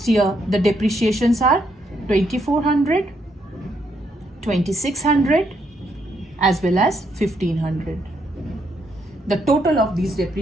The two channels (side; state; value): both; normal; correlation 0.75